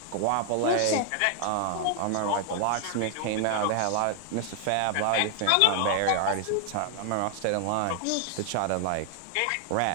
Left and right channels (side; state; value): both; different; correlation 0.00